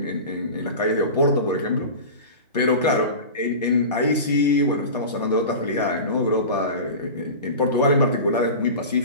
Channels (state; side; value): inverted; both; correlation -0.31